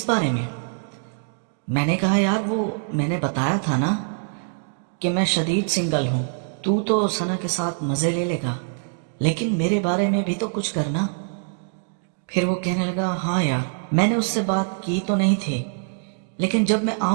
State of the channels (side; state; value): left; silent; digital silence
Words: بارے میں؟ میں نے کہا یار وہ میں نے بتایا تھا نا کہ میں شدید سنگل ہوں، تو ثنا کے ساتھ مزے لے لے گا، لیکن میرے بارے میں بھی تو کچھ کرنا۔ پھر وہ کہنے لگا ہاں یار میں نے اس سے بات کی تو نہیں تھی، لیکن جب میں